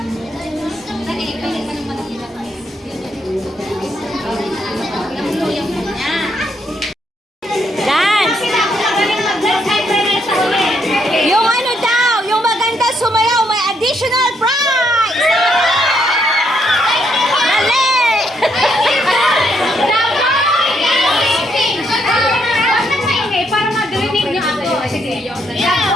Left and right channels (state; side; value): normal; both; correlation 0.74